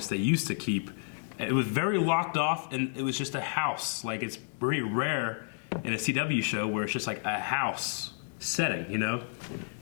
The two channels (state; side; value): silent; right; digital silence